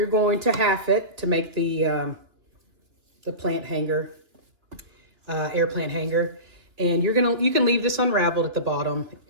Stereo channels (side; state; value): left; late; 2.9 ms